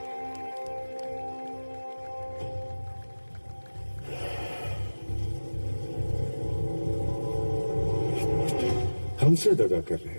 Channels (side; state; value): both; inverted; correlation -1.00